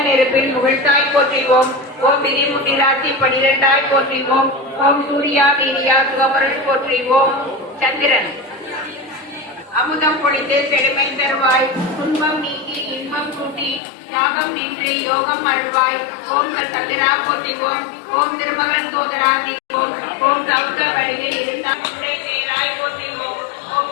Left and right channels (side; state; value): right; drops out; at 13.8 s